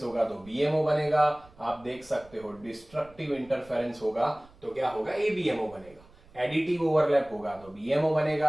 होगा तो बीएमओ बनेगा। आप देख सकते हो डिस्ट्रक्टिव इंटरफेरेंस होगा तो क्या होगा? एबीएमओ बनेगा। एडिटिव ओवरलैप होगा तो बीएमओ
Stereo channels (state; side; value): noise; right; rumble, 25 dB below the sound